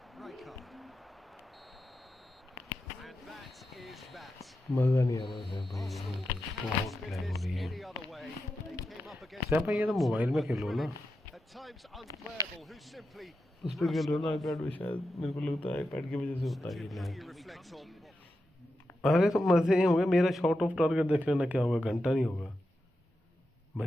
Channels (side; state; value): both; normal; correlation 0.89